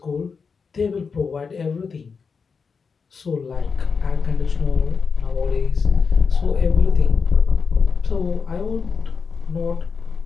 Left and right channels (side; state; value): right; quieter; 5.4 dB